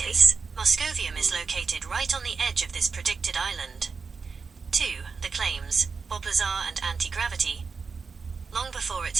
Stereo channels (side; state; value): left; quieter; 5.1 dB